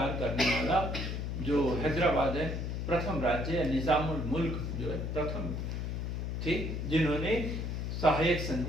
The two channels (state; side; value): noise; left; hum, 3 dB below the sound